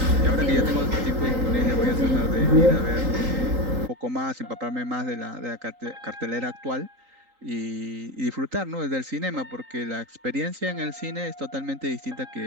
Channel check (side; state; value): left; late; 3.8 ms